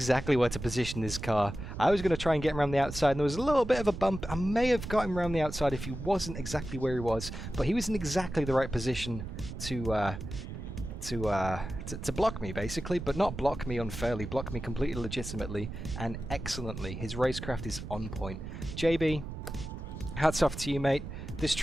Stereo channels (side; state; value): right; noise; rumble, 8 dB below the sound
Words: where to position his car. I was going to try and get him around the outside, and there was a little bit of a bump. I may have got him around the outside if he wasn't exactly where he was, but he was in exactly the right position to block me, basically, but not block me unfairly, block me completely legitimately and excellently. His racecraft is on point. JB, hats off to you, mate. This